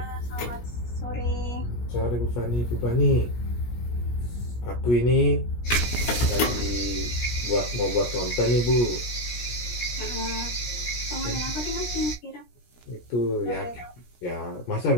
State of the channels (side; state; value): right; late; 17 ms